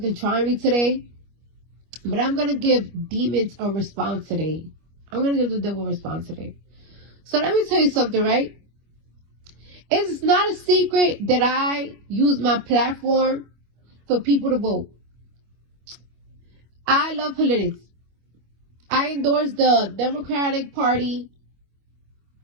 trying me today. But I'm gonna give demons a response today. I'm gonna give the devil a response today. So let me tell you something, right? It's not a secret that I use my platform for people to vote. I love politics. I endorse the Democratic Party.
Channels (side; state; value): left; late; 25 ms